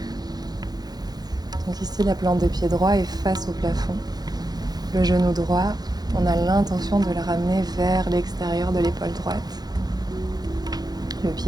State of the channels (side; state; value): left; late; 0.19 ms